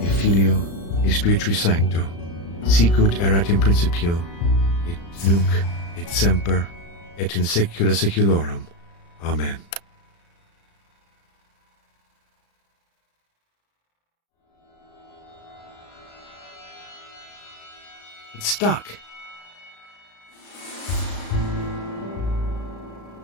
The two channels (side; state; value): right; late; 35 ms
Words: et Filio, et Spiritui Sancto, sicut erat in principio, et nunc, et semper, et in saecula saeculorum. Amen. It's stuck.